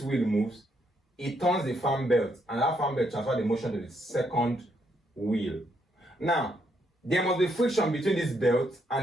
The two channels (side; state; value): both; normal; correlation 0.75